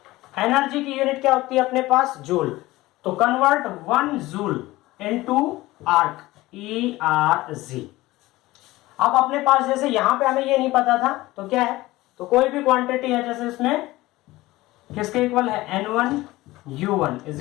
एनर्जी की यूनिट क्या होती है अपने पास, जूल, तो convert 1 joule into arc, ERG। अब अपने पास जैसे यहां पे हमें ये नहीं पता था, तो क्या है, तो कोई भी क्वांटिटी है, जैसे इसमें किसके इक्वल है, N1 U1 is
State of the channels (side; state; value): right; quieter; 18.5 dB